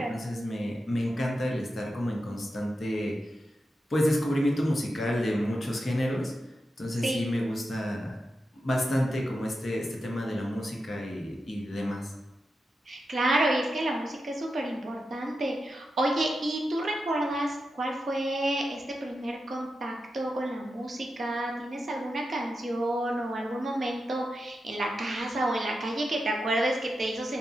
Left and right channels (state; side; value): normal; both; correlation 0.89